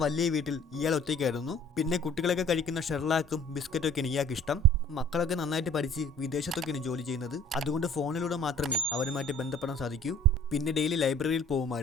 വീട്ടിൽ ഇയാൾ ഒറ്റയ്ക്കായിരുന്നു. പിന്നെ കുട്ടികളൊക്കെ കഴിക്കുന്ന ഷെർലാക്കും ബിസ്ക്കറ്റൊക്കെയാണ് ഇയാൾക്ക് ഇഷ്ടം. മക്കളൊക്കെ നന്നായിട്ട് പഠിച്ച് വിദേശത്തൊക്കെയാണ് ജോലി ചെയ്യുന്നത്. അതുകൊണ്ട് ഫോണിലൂടെ മാത്രമേ അവരുമായിട്ട് ബന്ധപ്പെടാൻ സാധിക്കൂ. പിന്നെ ഡെയിലി ലൈബ്രറിയിൽ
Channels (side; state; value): both; normal; correlation 0.51